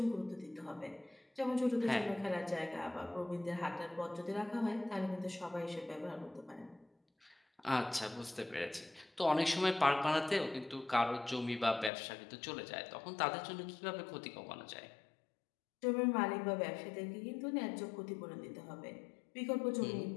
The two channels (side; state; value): right; drops out; at 11.9 s